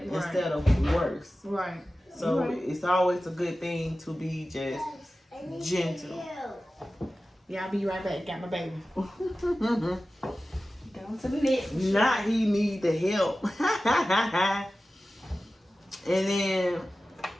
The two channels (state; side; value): normal; both; correlation 0.95